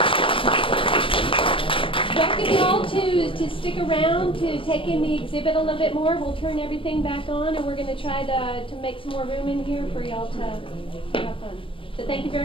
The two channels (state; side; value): late; right; 0.25 ms